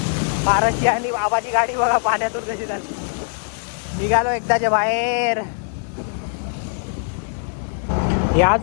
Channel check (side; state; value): right; silent; digital silence